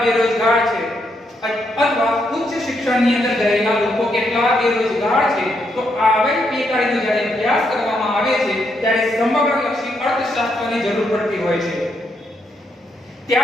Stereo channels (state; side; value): normal; both; correlation 0.78